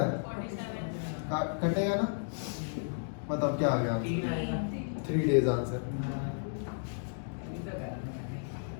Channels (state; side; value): silent; right; digital silence